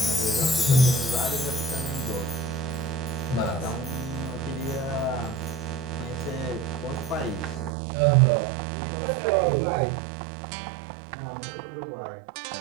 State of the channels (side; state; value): left; drops out; at 7.8 s